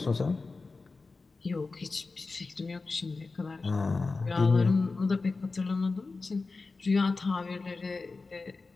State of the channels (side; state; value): right; quieter; 3.9 dB